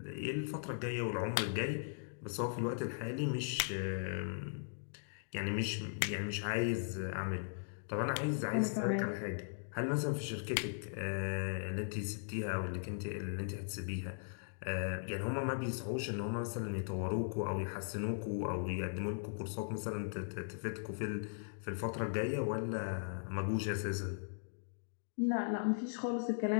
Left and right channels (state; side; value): silent; right; digital silence